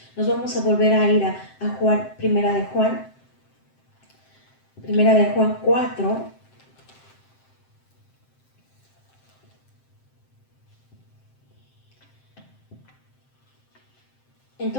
Nos vamos a volver a ir a Juan, primera de Juan 4.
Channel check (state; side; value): late; right; 7.7 ms